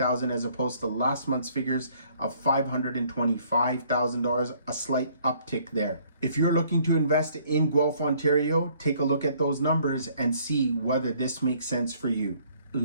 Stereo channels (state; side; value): inverted; both; correlation -0.62